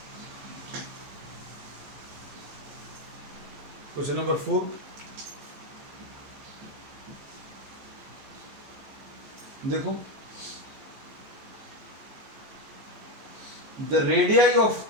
क्वेश्चन नंबर 4, देखो the radii of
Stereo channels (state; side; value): late; left; 15 ms